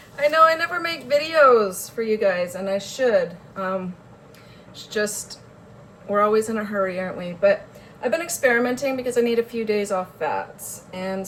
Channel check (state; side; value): identical; both; correlation 1.00